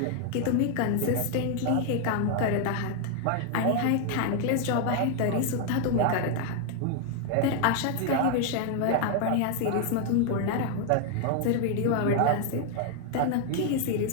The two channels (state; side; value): different; both; correlation 0.00